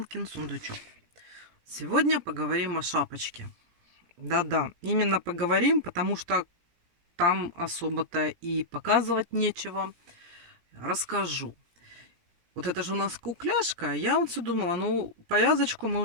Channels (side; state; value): left; late; 17 ms